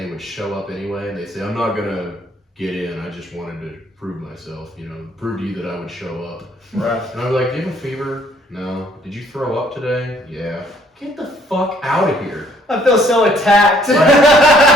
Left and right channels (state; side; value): normal; both; correlation 0.63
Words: would show up anyway and they say, "I'm not gonna get in. I just wanted to prove myself. Prove to you that I would show up." Right. And I was like, "Do you have a fever? No. Did you throw up today? Yeah. Get the fuck out of here. I feel so attacked.